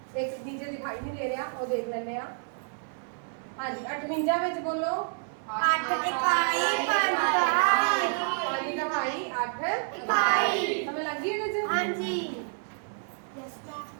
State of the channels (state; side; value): silent; left; 58 dB below the other